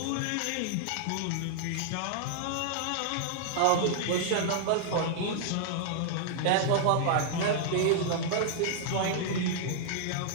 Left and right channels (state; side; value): different; both; correlation -0.01